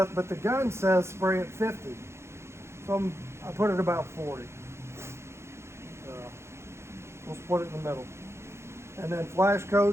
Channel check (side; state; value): left; late; 0.13 ms